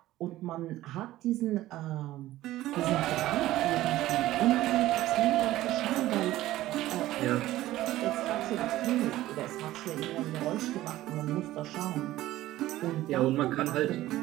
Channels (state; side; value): quieter; left; 15.5 dB